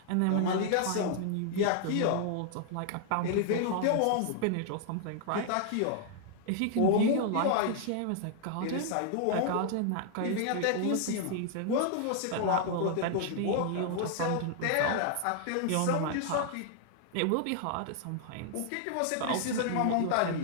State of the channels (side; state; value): both; different; correlation 0.00